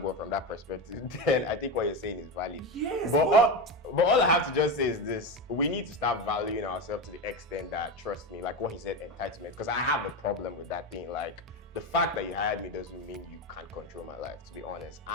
from that perspective, then I think what you're saying is valid. Yes. But all I have to just say is this: we need to start valuing ourselves to the extent that, trust me, like what he said, entitlement. Because I have a problem with that thing, like. The fact that you hired me doesn't mean you can't control my life, to be honest.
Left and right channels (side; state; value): both; normal; correlation 0.18